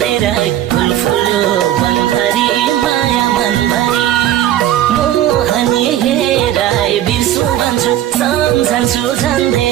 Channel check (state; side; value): quieter; left; 12.4 dB